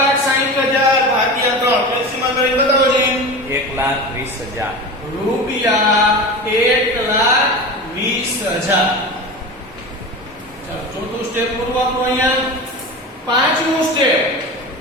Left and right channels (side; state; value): both; normal; correlation 0.29